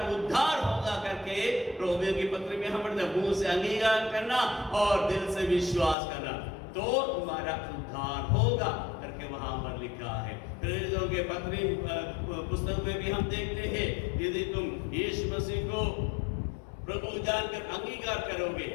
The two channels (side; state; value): right; drops out; at 6.0 s